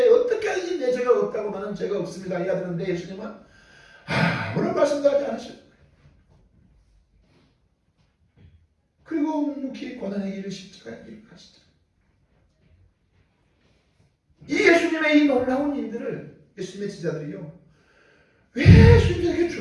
어떻게 하든지 내 죄가 없다고, 나는 죄가 없습니다 이야 되는데, 예수님은 아무런 말씀도 하지 않으셨어요. 그리고 묵묵히 고난의 길을, 십자가의 길을 가시죠. 이 예수님의 이 놀라운 일들을 예수님의 제자들이요, 왜 예수님이 이렇게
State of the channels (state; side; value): identical; both; correlation 1.00